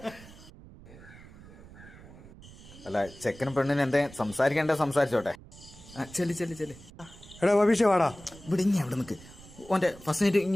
അല്ല ചെക്കനും പെണ്ണിന് എന്തേ സംസാരിക്കണ്ടേ, സംസാരിച്ചോട്ടെ. ചെല്ലി എടാ ബബീഷ് വാടാ. ഇവിടെ ഇനി അവിടെ നിൽക്ക്. ഓൻ്റെ ഫസ്റ്റ് നൈറ്റ്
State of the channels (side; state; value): right; noise; rumble, 19 dB below the sound